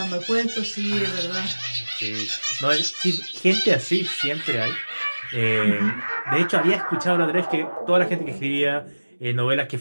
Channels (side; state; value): both; inverted; correlation -1.00